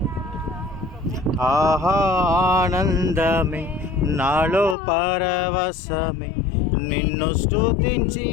ఆహా ఆనందమే నాలో పరవశమే, నిన్ను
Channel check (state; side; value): drops out; right; at 4.8 s